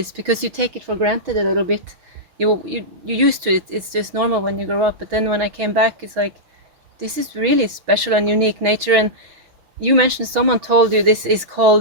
because you take it for granted a little bit. You used to it. It's just normal when you grow up. But then when I came back, it's like, this is really special and unique nature. And you mentioned someone told you this is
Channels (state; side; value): late; left; 6.2 ms